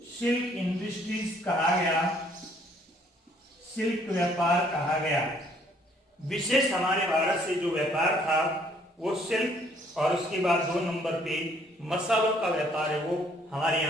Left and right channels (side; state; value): both; normal; correlation 0.63